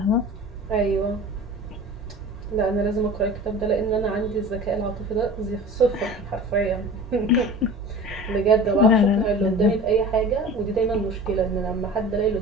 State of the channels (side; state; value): both; normal; correlation 0.38